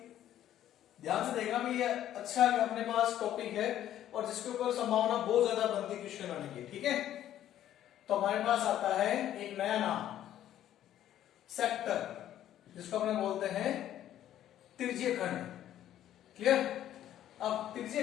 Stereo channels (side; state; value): right; quieter; 11.8 dB